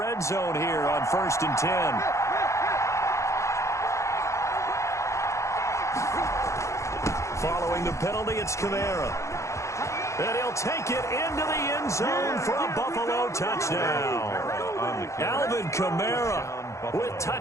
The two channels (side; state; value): right; late; 0.14 ms